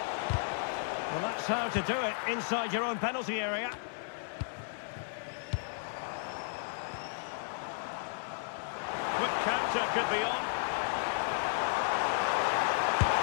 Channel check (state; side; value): silent; right; 55 dB below the other